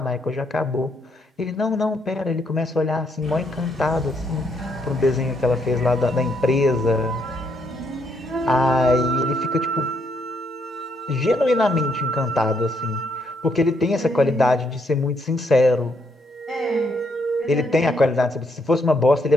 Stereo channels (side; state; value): both; normal; correlation 0.74